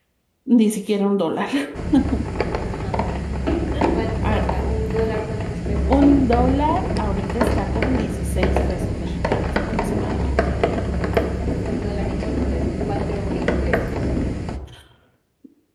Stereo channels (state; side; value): identical; both; correlation 1.00